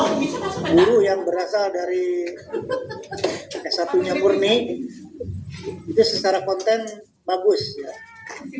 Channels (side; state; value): both; identical; correlation 1.00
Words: guru yang berasal dari S1-nya murni itu secara konten bagus ya.